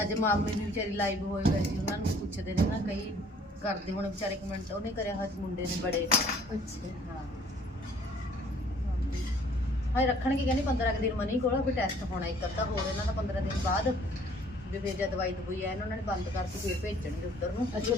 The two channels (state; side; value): normal; both; correlation 0.57